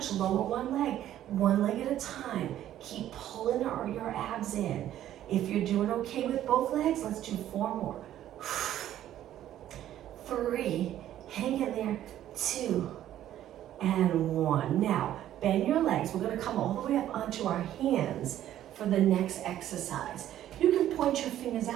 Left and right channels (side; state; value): left; quieter; 12.2 dB